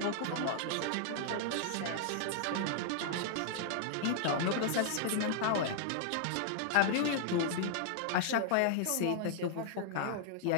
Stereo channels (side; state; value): both; different; correlation -0.01